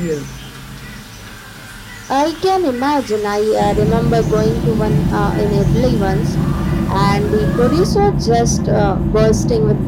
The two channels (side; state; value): both; identical; correlation 1.00